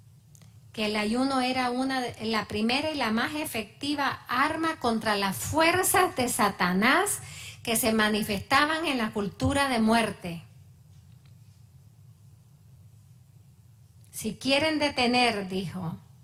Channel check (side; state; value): both; identical; correlation 1.00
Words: Que el ayuno era la primera y la más efectiva arma contra las fuerzas de Satanás que se manifestaban en la cultura de muerte. Si quieren detener, dijo,